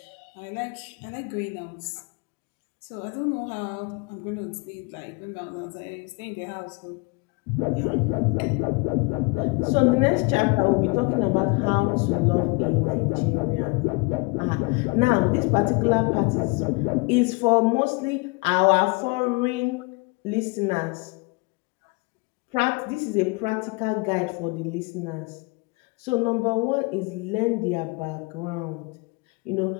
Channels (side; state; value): right; quieter; 28.2 dB